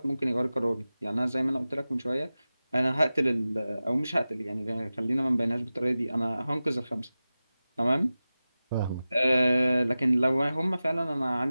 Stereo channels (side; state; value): both; inverted; correlation -0.95